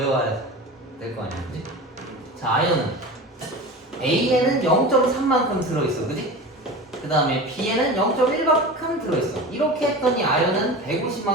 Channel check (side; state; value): both; normal; correlation 0.32